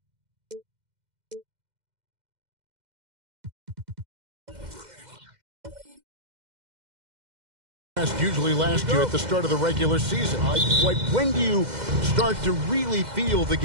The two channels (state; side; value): late; left; 2.1 ms